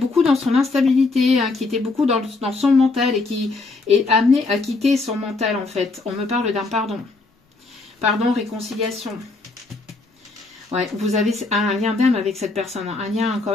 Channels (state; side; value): quieter; right; 3.6 dB